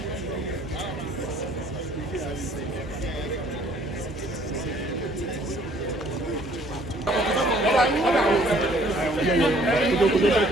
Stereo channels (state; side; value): normal; both; correlation 0.59